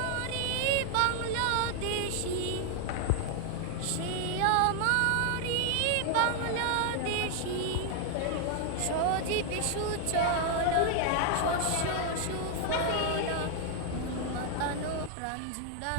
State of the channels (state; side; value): different; both; correlation 0.00